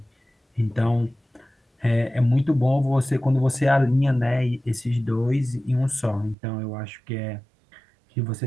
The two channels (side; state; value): left; drops out; at 6.4 s